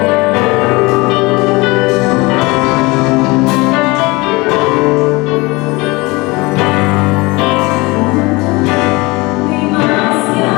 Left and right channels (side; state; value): right; quieter; 23.9 dB